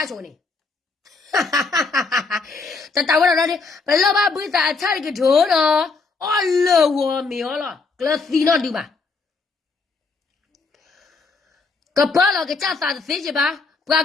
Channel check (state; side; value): quieter; right; 4.2 dB